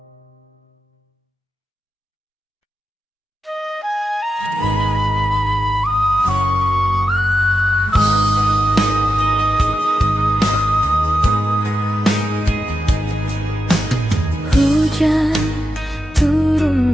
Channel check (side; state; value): both; normal; correlation 0.89